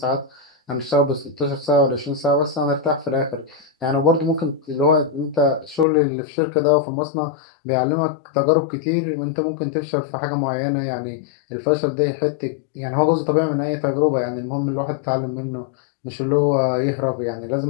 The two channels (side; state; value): right; drops out; at 5.9 s